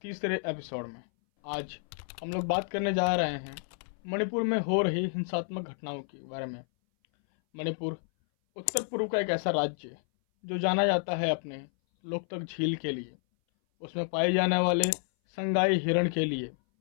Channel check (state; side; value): silent; right; 58 dB below the other